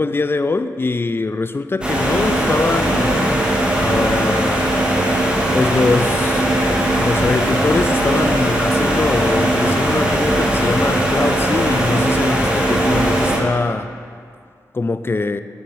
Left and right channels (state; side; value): normal; both; correlation 0.80